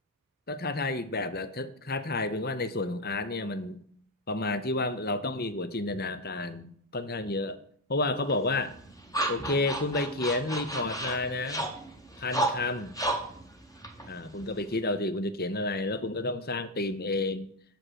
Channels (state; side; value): normal; both; correlation 0.08